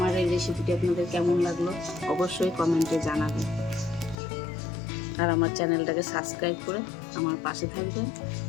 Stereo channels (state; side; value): drops out; right; at 4.2 s